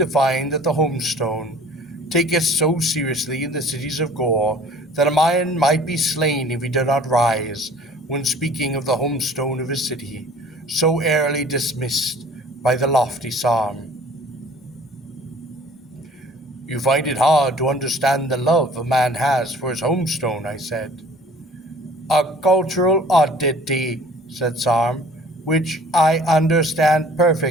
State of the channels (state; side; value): normal; both; correlation 0.50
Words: find that the homestone taketh so seriously in the cities of Gor that a man might be slain if he did not rise when speaking of the homestone of his city, so airily dismissed by the lofty Sarm. You find it hard to understand the love a man has for his homestone, I said. A cultural oddity, said Sarm, which I understand